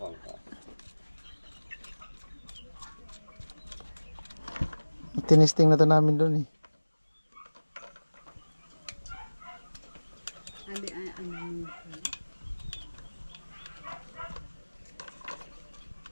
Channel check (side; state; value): both; inverted; correlation -1.00